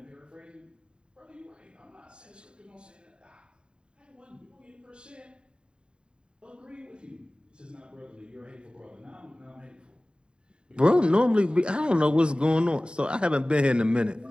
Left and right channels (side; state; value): left; late; 0.051 ms